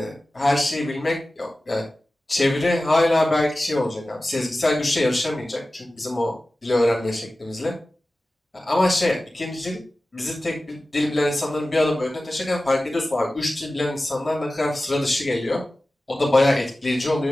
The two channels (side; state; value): both; normal; correlation 0.96